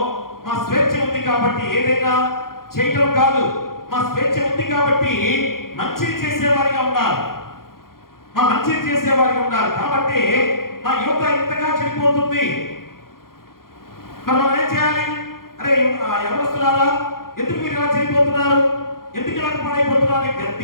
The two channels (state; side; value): late; right; 0.92 ms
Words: మా స్వేచ్ఛ ఉంది కాబట్టి ఏదైనా చేయటం కాదు, మా స్వేచ్ఛ ఉంది కాబట్టి మంచిని చేసేవారిగా ఉండాలి, మా మంచిని చేసేవారిగా ఉండాలి. కాబట్టి మా యువత ఇంతగా చెడిపోతుంది. మరి మనం ఏం చేయాలి? అరే ఎవరొస్తున్నారా, ఎందుకు మీరు ఇలా చెడిపోతున్నారు, ఎందుకు ఇలా పాడైపోతున్నారు